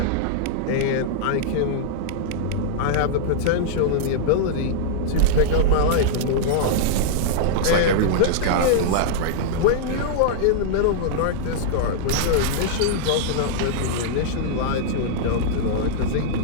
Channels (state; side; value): different; both; correlation -0.02